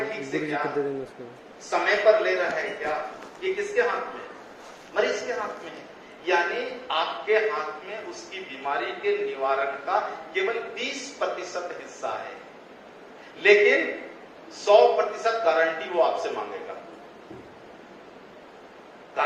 ठीक से क्या, समय पर ले रहा है क्या, ये किसके हाथ में? मरीज के हाथ में है। यानी आपके हाथ में उसकी बीमारी के निवारण का केवल 20% हिस्सा है, लेकिन 100% गारंटी वो आपसे मांगेगा।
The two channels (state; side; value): identical; both; correlation 1.00